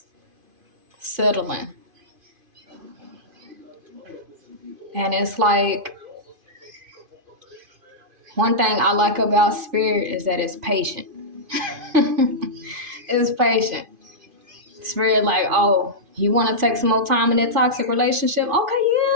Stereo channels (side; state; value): left; late; 2.5 ms